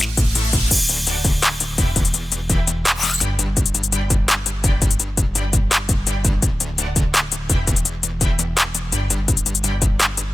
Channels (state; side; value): normal; both; correlation 0.95